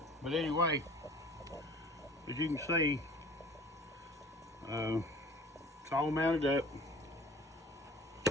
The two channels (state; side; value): normal; both; correlation 0.47